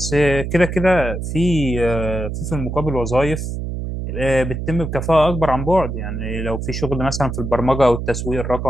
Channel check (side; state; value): right; noise; hum, 5 dB below the sound